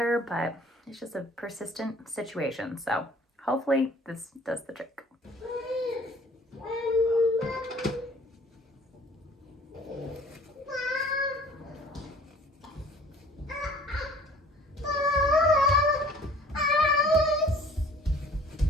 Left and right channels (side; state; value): both; normal; correlation 0.52